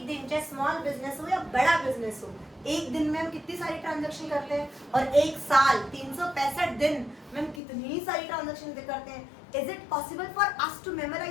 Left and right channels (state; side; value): drops out; right; at 7.6 s